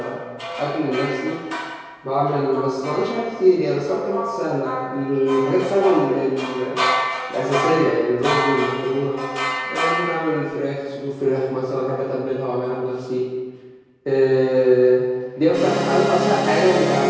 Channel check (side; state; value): both; identical; correlation 1.00